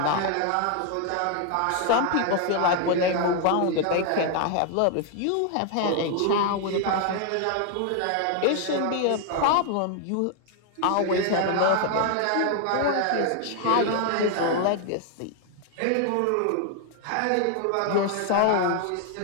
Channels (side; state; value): both; different; correlation 0.00